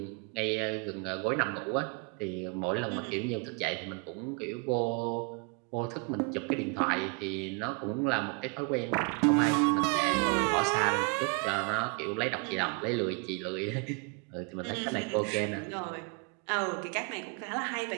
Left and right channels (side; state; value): left; quieter; 32.9 dB